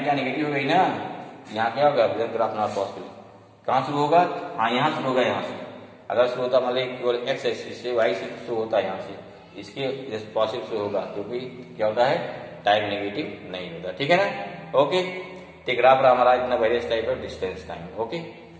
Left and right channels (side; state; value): both; identical; correlation 1.00